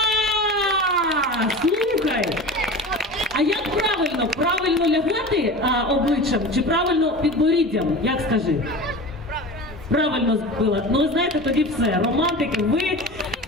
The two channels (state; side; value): normal; both; correlation 0.33